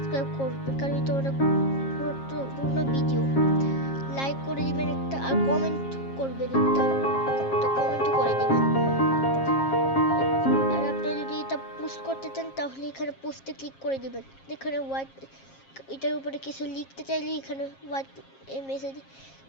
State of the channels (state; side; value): late; right; 7.4 ms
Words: করবেন, কারণ এটা অনেক গুরুত্বপূর্ণ ভিডিও। লাইক করে দিবেন একটা, আর কমেন্ট করবেন একটা, তো কমেন্টও করে দিবেন। আর আপনারা যদি এটা পোস্ট করতে চান তাহলে এখানে পোস্টে ক্লিক করে দিবেন। এখানে হোয়াইট, এটার উপরে কিছু লিখতে চাইলে এখানে হোয়াইট মেসেজ